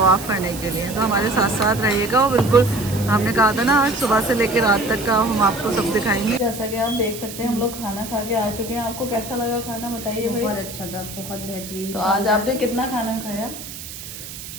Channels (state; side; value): noise; right; hiss, 12 dB below the sound